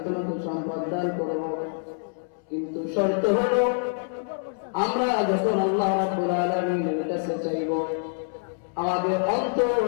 তোমাকে সম্পদ দান করব। কিন্তু শর্ত হলো আমরা যখন আল্লাহ রাব্বুল আলামিনের কাছে চাইব আমাদের অন্তর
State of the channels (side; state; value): right; silent; 61 dB below the other